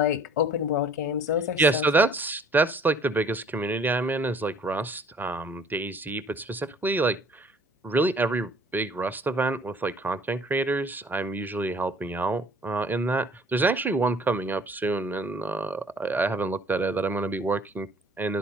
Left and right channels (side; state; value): both; normal; correlation 0.54